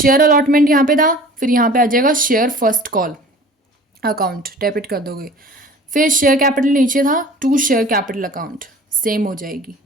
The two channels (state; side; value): normal; both; correlation 0.44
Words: अलॉटमेंट यहाँ पे था, फिर यहाँ पे आ जाएगा share first call account, debit कर दोगे। फिर शेयर कैपिटल नीचे था, to share capital account, same हो जाएगी।